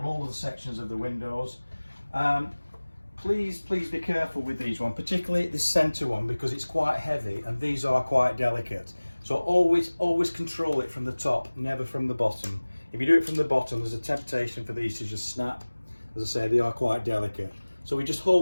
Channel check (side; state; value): both; inverted; correlation -1.00